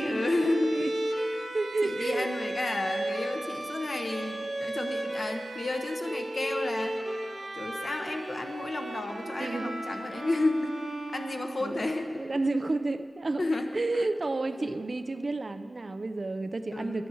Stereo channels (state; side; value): normal; both; correlation 0.95